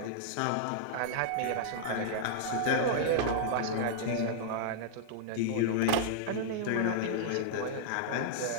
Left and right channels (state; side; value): different; both; correlation -0.02